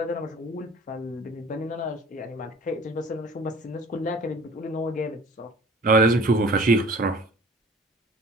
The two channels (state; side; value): normal; both; correlation 0.47